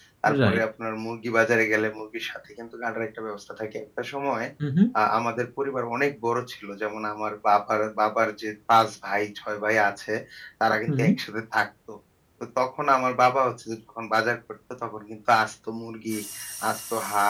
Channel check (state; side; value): identical; both; correlation 1.00